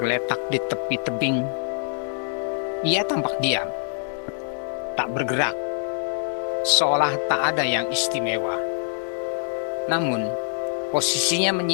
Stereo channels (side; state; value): right; silent; 62 dB below the other